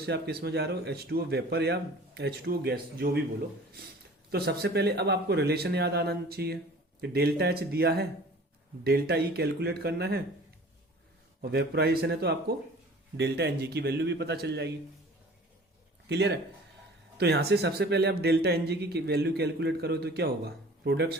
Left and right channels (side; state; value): both; normal; correlation 0.46